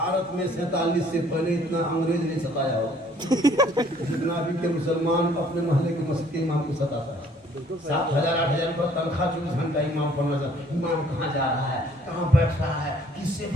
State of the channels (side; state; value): both; normal; correlation 0.59